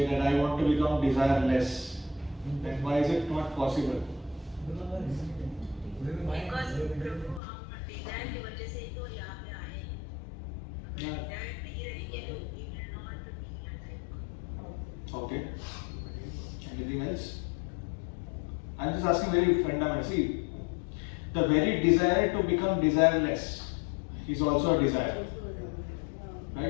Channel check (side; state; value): right; drops out; at 7.4 s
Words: that I want to become desireless. Then why is it not possible? Because प्रभु हम Dzire की वजह से ही तो यहाँ पे आए हैं. Dzire नहीं रहेंगे तो we will not be alive. Okay. Anything else? I'm just asking very fundamental. See, the very desire to become desireless is also a desire.